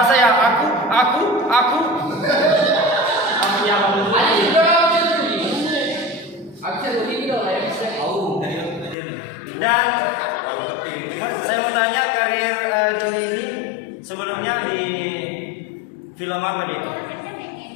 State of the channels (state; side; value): drops out; right; at 9.0 s